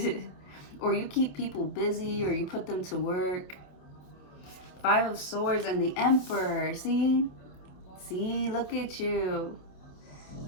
Or you keep people busy, or you put them to work. Five of Swords and the Emperor. See, look at you.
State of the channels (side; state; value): right; late; 28 ms